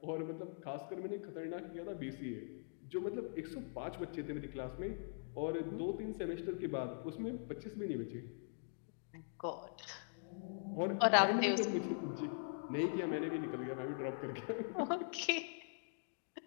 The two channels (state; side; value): silent; right; digital silence